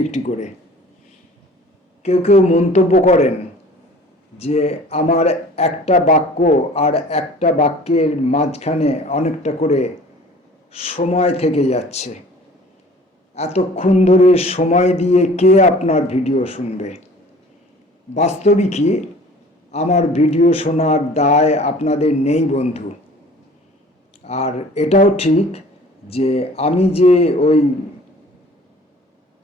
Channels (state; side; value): normal; both; correlation 0.48